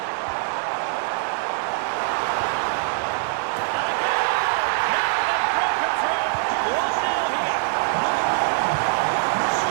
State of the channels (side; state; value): left; silent; digital silence